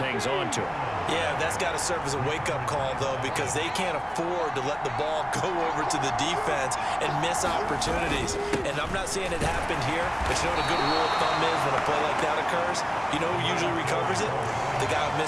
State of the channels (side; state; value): both; identical; correlation 1.00